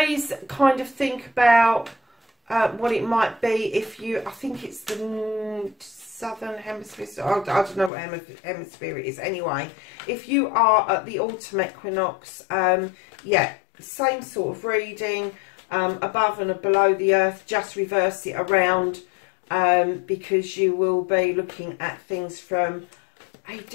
kind of think about what it might be if you, I think it's the southern hemisphere, I don't know what hemisphere it is. Anyway, if you are at the autumn equinox, yeah, same sort of reading, above and below the earth, just reverse it around, because you will be looking at things from a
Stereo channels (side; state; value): right; drops out; at 7.9 s